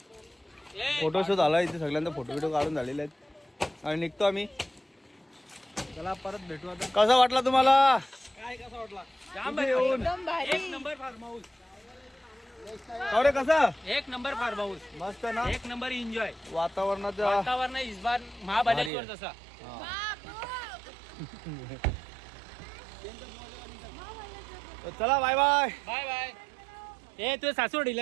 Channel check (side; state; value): left; drops out; at 18.9 s